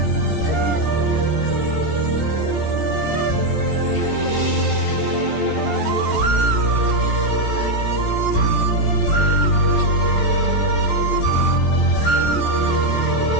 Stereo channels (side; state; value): right; late; 14 ms